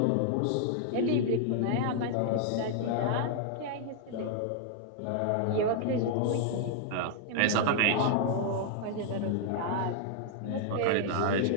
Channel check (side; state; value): both; different; correlation -0.01